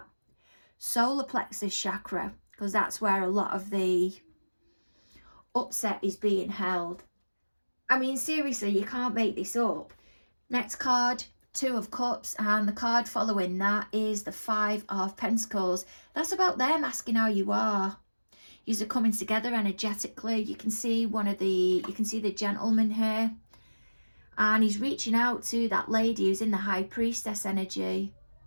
solar plexus chakra, because that's where a lot of the upset is being held. I mean, seriously, you can't make this up. Next card, 2 of Cups, and the card following that is the 5 of Pentacles. That's about them asking how you are. Yous are coming together energetically. You can see the gentleman here, and he's reaching out to that lady who's in the High Priestess energy.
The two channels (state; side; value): inverted; both; correlation -1.00